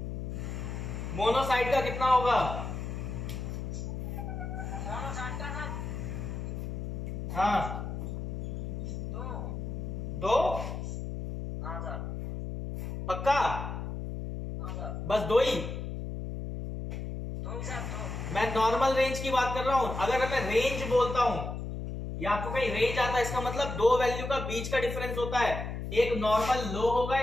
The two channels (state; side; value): noise; left; hum, 5 dB below the sound